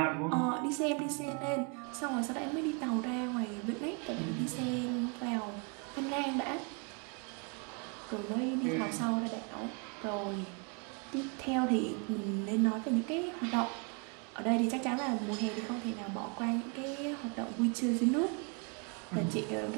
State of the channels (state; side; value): quieter; left; 35.6 dB